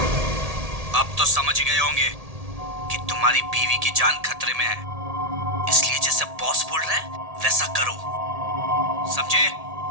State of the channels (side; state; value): left; late; 1.8 ms